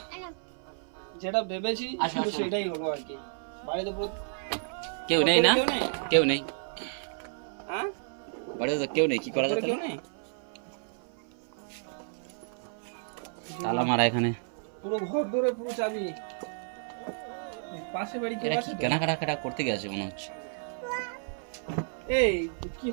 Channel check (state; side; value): silent; left; 55 dB below the other